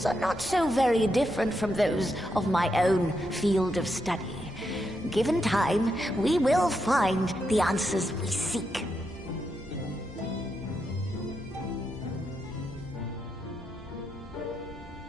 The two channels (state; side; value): normal; both; correlation 0.83